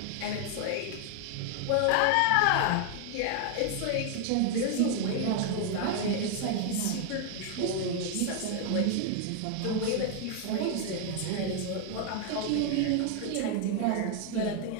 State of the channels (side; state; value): both; different; correlation 0.00